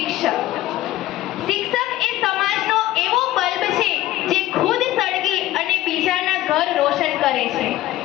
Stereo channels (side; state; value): right; quieter; 15.1 dB